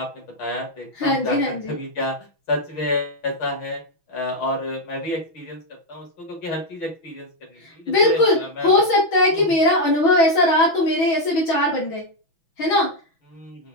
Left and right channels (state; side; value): late; right; 6.1 ms